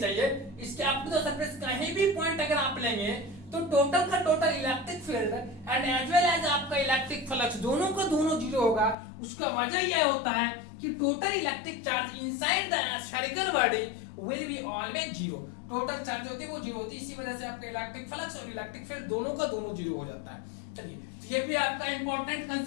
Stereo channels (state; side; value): drops out; right; at 9.0 s